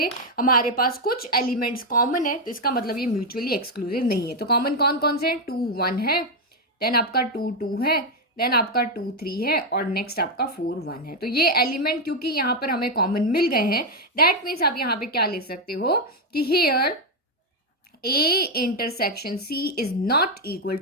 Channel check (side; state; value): both; normal; correlation 0.03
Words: हमारे पास कुछ एलिमेंट्स कॉमन है, तो इसका मतलब ये म्यूचुअली एक्सक्लूसिव नहीं है। तो कॉमन कौन कौन से हैं, 2 1 है, देन आपका 2 2 है, देन आपका 2 3 है, और नेक्स्ट आपका 4 1 है। तो ये एलिमेंट क्योंकि यहाँ पर हमें कॉमन मिल गए हैं, दैट मीन्स आप यहाँ पे क्या ले सकते हो कि here A intersection C is not equal